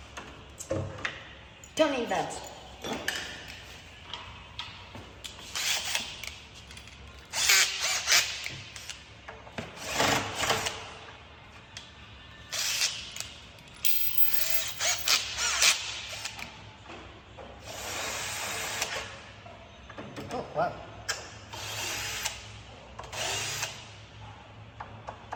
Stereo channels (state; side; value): identical; both; correlation 1.00